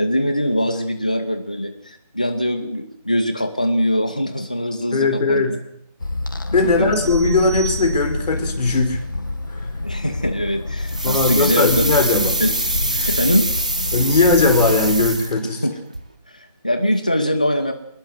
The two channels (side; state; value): both; inverted; correlation -0.57